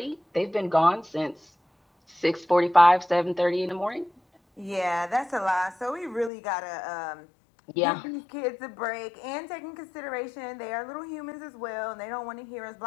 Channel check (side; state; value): right; drops out; at 6.3 s